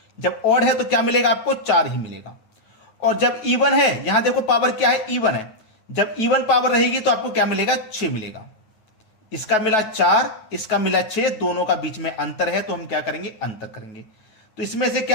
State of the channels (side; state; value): right; late; 9.3 ms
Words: जब ऑड है तो क्या मिलेगा आपको? 4 ही मिलेगा। और जब इवन है, यहां देखो पावर क्या है? इवन है। जब इवन पावर रहेगी तो आपको क्या मिलेगा? 6 मिलेगा। इसका मिला 4, इसका मिला 6, दोनों का बीच में अंतर है, तो हम क्या करेंगे? अंतर करेंगे। तो इसमें से